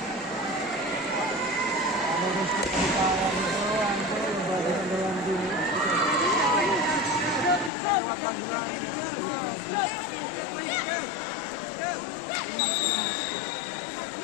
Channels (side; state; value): right; drops out; at 7.7 s